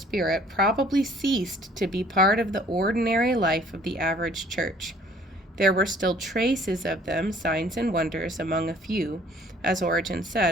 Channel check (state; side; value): normal; both; correlation 0.56